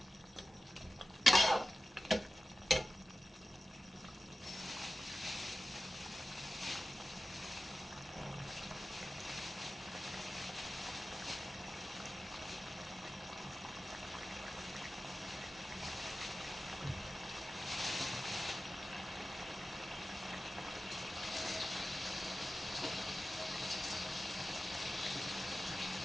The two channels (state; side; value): normal; both; correlation 0.95